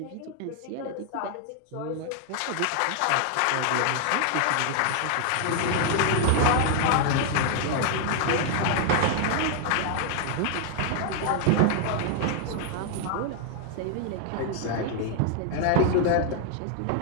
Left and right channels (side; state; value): both; different; correlation 0.00